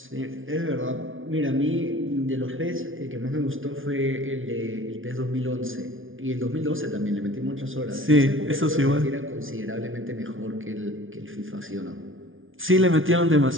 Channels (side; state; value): left; late; 0.58 ms